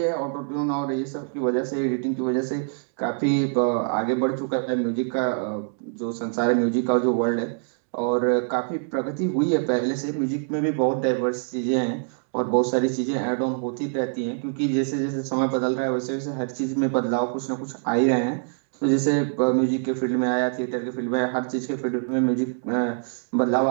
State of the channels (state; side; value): silent; left; digital silence